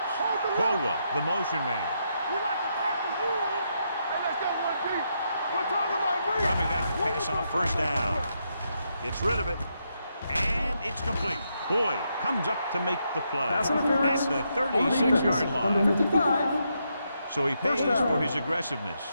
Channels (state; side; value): inverted; both; correlation -0.80